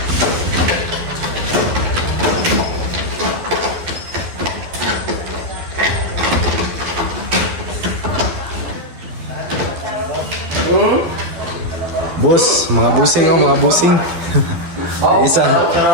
Boss, mga busing oh, mga busing. Isa,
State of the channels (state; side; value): late; left; 12 ms